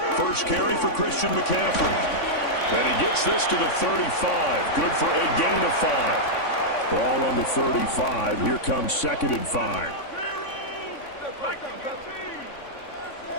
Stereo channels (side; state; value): right; late; 3.5 ms